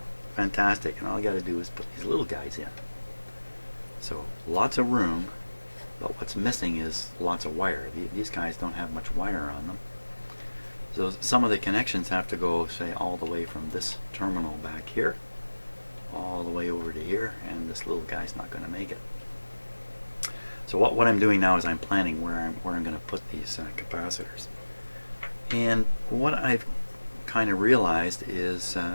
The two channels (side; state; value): both; inverted; correlation -1.00